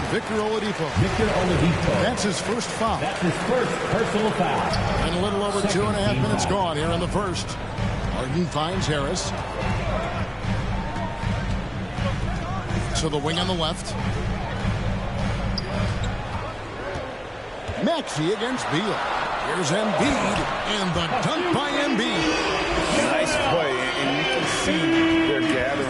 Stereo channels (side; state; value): both; identical; correlation 1.00